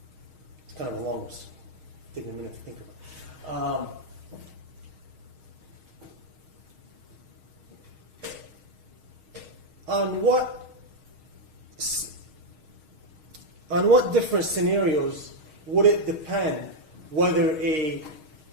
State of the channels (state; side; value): late; left; 6.4 ms